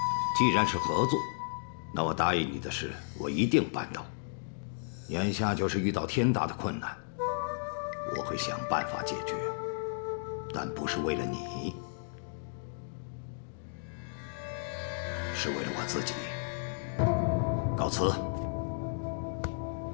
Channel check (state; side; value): silent; right; digital silence